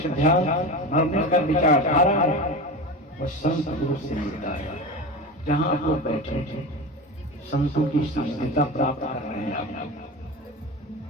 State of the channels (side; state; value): both; normal; correlation 0.26